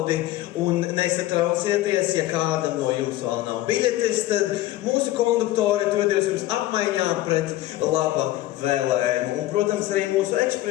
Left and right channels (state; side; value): quieter; right; 15.7 dB